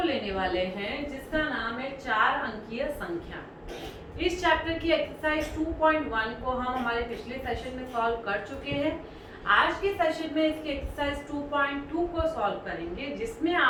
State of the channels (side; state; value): both; identical; correlation 1.00